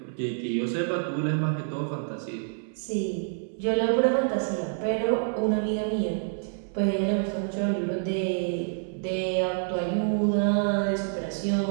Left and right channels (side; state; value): left; silent; 60 dB below the other